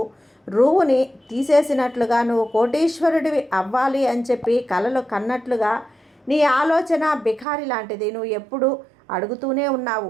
రువుని తీసేసినట్లుగా నువ్వు కోటీశ్వరుడివి అవ్వాలి అని చెప్పి కలలు కన్నట్లుగా నీ ఆలోచన బిఖారి లాంటిది. నువ్వు ఎప్పుడు అడుగుతూనే ఉన్నావు,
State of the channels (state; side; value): drops out; left; at 7.5 s